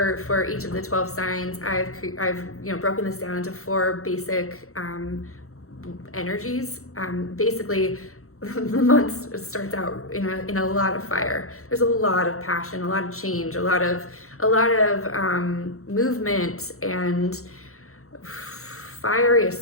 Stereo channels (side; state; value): right; late; 0.63 ms